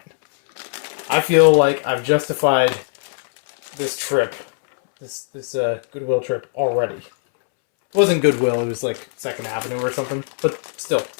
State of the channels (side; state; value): right; silent; 66 dB below the other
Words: I feel like I've justified this trip. This Goodwill trip already. It wasn't Goodwill, it was like 2nd Avenue or something. But still,